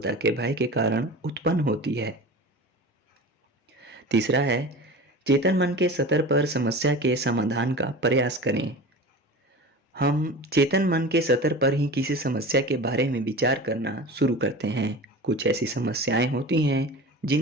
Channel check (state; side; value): normal; both; correlation 0.34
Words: के भय के कारण उत्पन्न होती है। तीसरा है, चेतन मन के स्तर पर समस्या के समाधान का प्रयास करें। हम चेतन मन के स्तर पर ही किसी समस्या के बारे में विचार करना शुरू करते हैं। कुछ ऐसी समस्याएं होती हैं